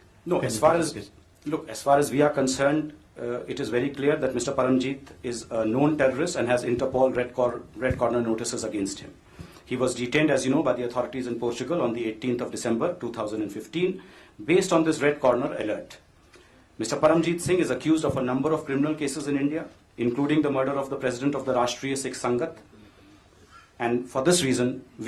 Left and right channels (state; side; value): identical; both; correlation 1.00